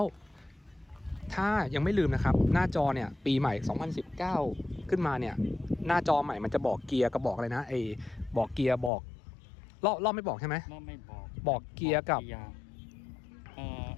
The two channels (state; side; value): drops out; right; at 8.9 s